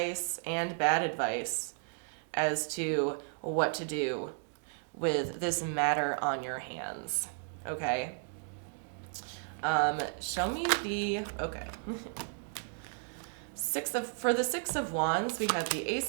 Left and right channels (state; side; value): silent; left; 55 dB below the other